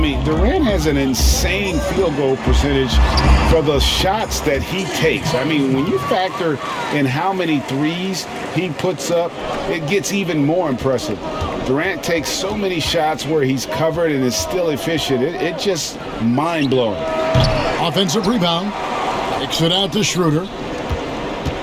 Durant has an insane field goal percentage for the shots that he takes. I mean, when you factor in how many threes he puts up, it gets even more impressive. Durant takes so many shots where he's covered and is still efficient. It's just mind-blowing. Offensive rebound. Kicks it out to Schroeder.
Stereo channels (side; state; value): both; identical; correlation 1.00